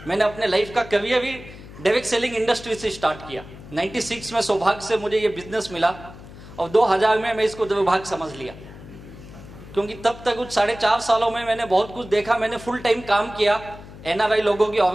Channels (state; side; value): noise; left; hum, 17 dB below the sound